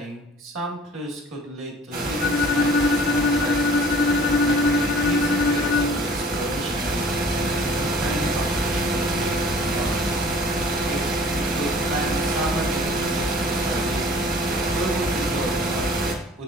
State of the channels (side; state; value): both; normal; correlation 0.50